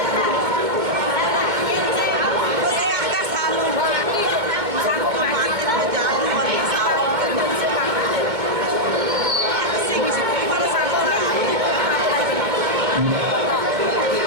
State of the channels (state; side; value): late; left; 2.2 ms